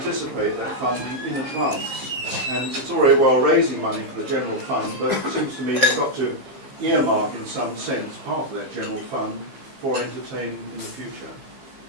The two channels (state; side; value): late; left; 15 ms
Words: that funding in advance. And it's all very well raising money for the general fund, but it seems to me you've got to earmark in some sense part of that general fund for entertaining in the future.